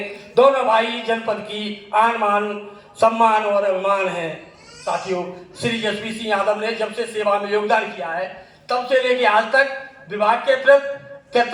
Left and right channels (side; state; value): both; identical; correlation 1.00